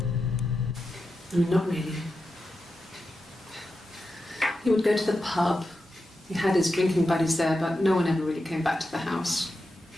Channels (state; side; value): normal; both; correlation 0.89